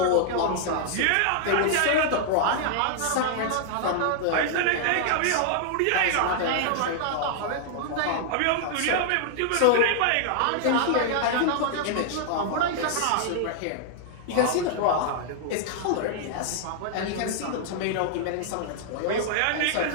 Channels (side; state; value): both; different; correlation -0.01